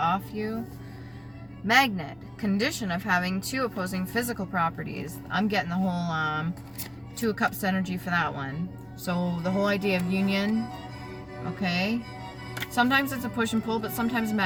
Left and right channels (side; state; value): left; noise; hum, 30 dB below the sound